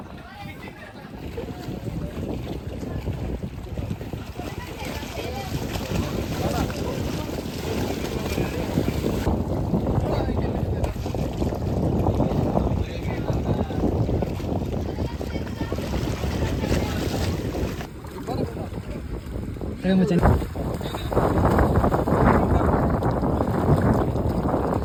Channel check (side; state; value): both; identical; correlation 1.00